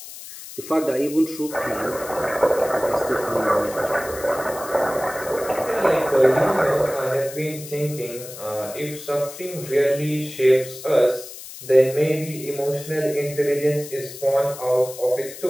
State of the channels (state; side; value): noise; left; hiss, 13 dB below the sound